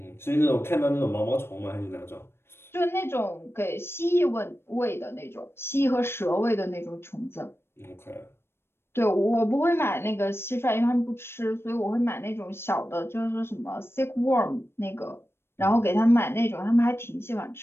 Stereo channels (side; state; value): right; late; 0.12 ms